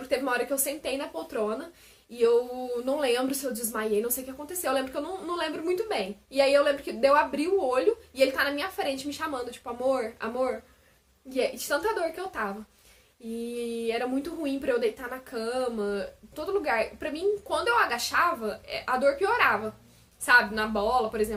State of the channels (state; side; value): identical; both; correlation 1.00